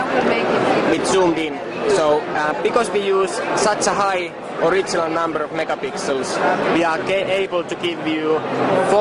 with zoomed in. So because we use such a high original number of megapixels, we are able to give you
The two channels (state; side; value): identical; both; correlation 1.00